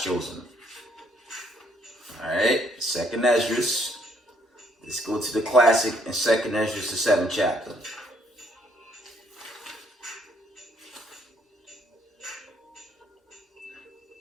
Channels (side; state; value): both; normal; correlation 0.68